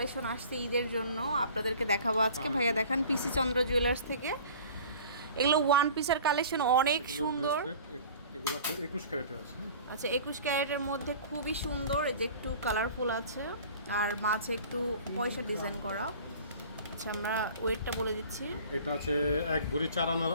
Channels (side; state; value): both; inverted; correlation -0.45